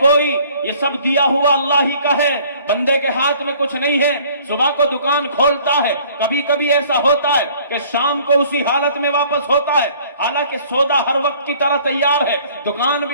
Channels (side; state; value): both; inverted; correlation -0.55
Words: یہ سب دیا ہوا اللہ ہی کا ہے، بندے کے ہاتھ میں کچھ نہیں ہے۔ صبح کو دکان کھولتا ہے، کبھی کبھی ایسا ہوتا ہے کہ شام کو اسی حالت میں واپس ہوتا ہے، حالانکہ سودا ہر وقت کی طرح تیار ہے، دکان